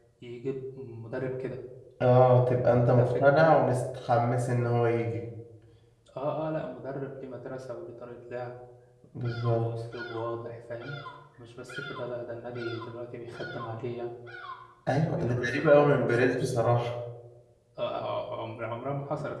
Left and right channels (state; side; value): identical; both; correlation 1.00